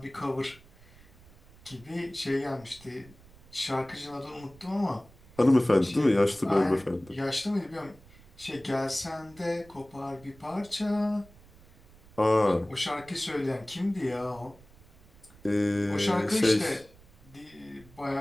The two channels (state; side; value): noise; right; rumble, 24 dB below the sound